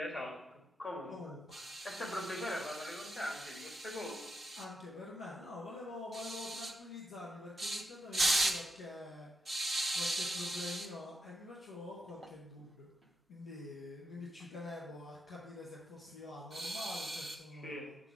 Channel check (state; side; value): normal; both; correlation 0.85